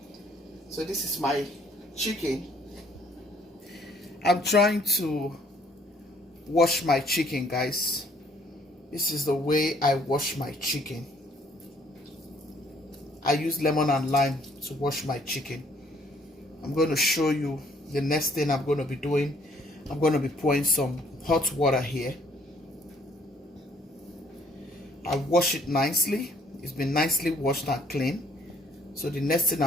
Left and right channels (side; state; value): both; normal; correlation 0.62